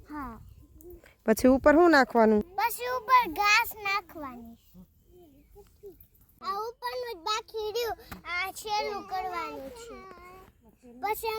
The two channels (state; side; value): identical; both; correlation 1.00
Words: હા. પછી ઉપર શું નાખવાનું? પછી ઉપર ઘાસ નાખવાની. આ ઉપરનું જ બાકી રહ્યું. આ છેલ્લું કરવાનું છે. પછી